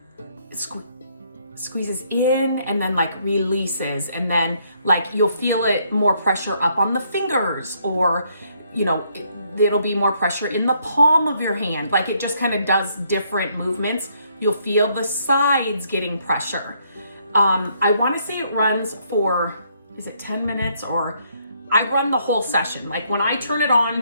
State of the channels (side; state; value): both; inverted; correlation -0.70